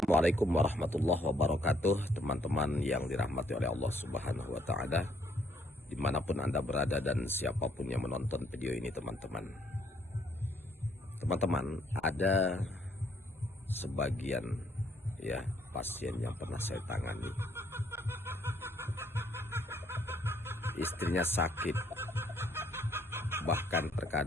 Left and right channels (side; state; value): both; normal; correlation 0.68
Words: warahmatullahi wabarakatuh, teman-teman yang dirahmati oleh Allah Subhanahu wa Ta'ala, dimanapun Anda berada dan siapapun yang menonton video ini. Teman-teman, ada sebagian pasien yang pernah saya tangani, istrinya sakit, bahkan